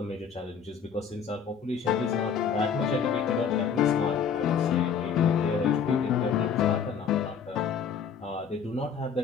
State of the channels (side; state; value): right; quieter; 6.8 dB